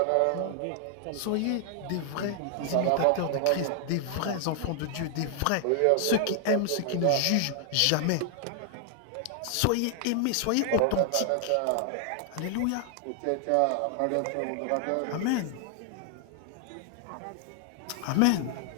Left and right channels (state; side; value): different; both; correlation 0.00